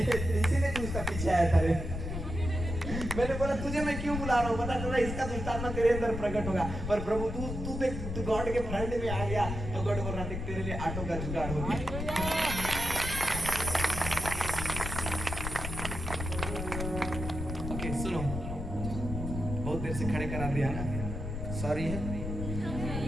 तू इसका पीछे आया था रे। मैंने बोला तुझे मैं क्यों बुला रहा हूँ, पता चला इसका दुष्टात्मा तेरे अंदर प्रकट होगा। पर प्रभु तू देख, तू गॉड के फ्रंट में आ गया तो गॉड बोल रहा देख तेरे लिए ऑटो का जुगाड़ हो गया। ओके सुनो, बहुत देर से खड़े करा दिया ना, सॉरी है।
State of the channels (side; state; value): left; noise; rumble, 5 dB below the sound